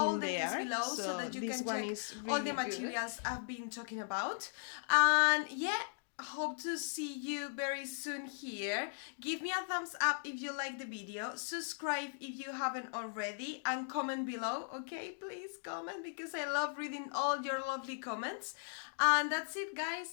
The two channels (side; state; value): right; silent; digital silence